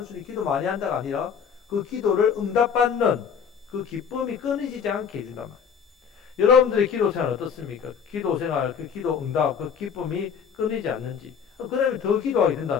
기도 많이 한다가 아니라 그 기도를 응답받는 그 기쁨이 끊이지 않게 해준단 말이에요. 여러분들의 기도 생활 어떻습니까? 기도 생활, 그 기도 응답, 그 기쁨이 끊이지 않는지. 그러면 더 기도하게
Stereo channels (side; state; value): right; quieter; 7.0 dB